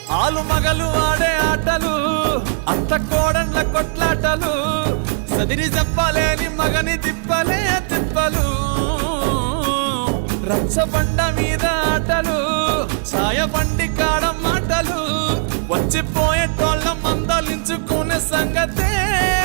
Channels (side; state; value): left; silent; digital silence